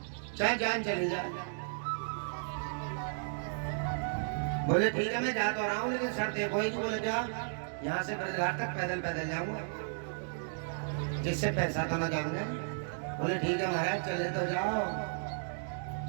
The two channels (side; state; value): left; silent; digital silence